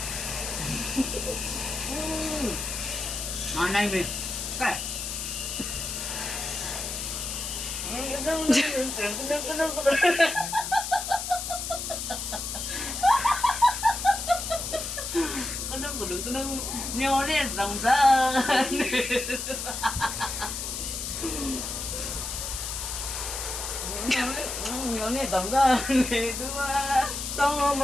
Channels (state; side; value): noise; left; hiss, 4 dB below the sound